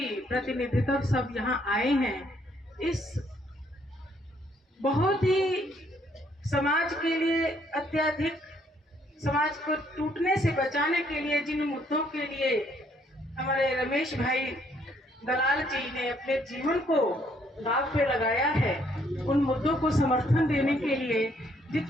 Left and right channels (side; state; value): both; normal; correlation 0.68